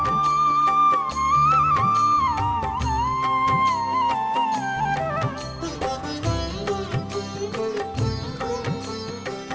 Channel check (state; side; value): identical; both; correlation 1.00